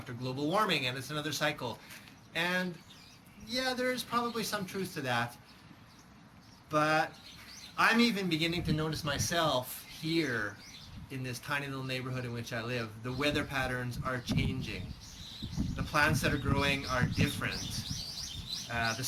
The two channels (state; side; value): identical; both; correlation 1.00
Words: global warming, and it's another cycle. And yeah, there's probably some truth to that. But I'm even beginning to notice myself here in this tiny little neighborhood in which I live. The weather patterns are changing. The plants that are growing are different. The